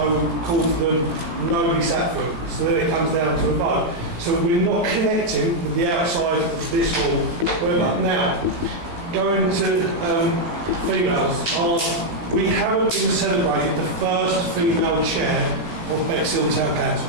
call for them, nobody sat for it. So then it comes down to a vote. So we're not connecting with the outside of this hall. Now, going to females, we haven't been celebrating the first female chair of Bexhill Town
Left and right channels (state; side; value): late; left; 17 ms